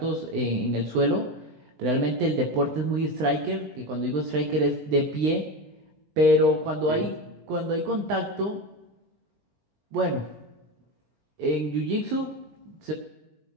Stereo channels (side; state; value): left; late; 20 ms